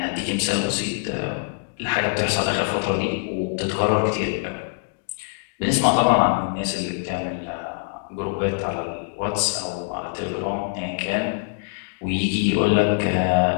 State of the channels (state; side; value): silent; right; digital silence